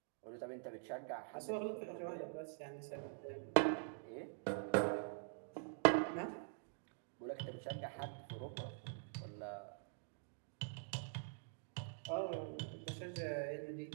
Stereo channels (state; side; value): silent; left; digital silence